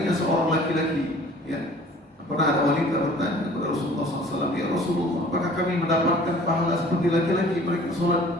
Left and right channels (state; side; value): normal; both; correlation 0.50